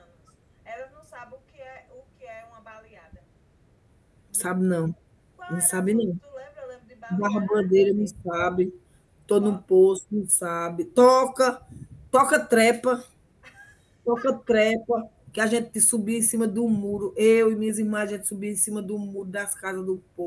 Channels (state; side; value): identical; both; correlation 1.00